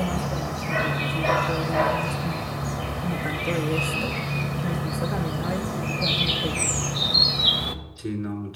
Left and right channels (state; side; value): identical; both; correlation 1.00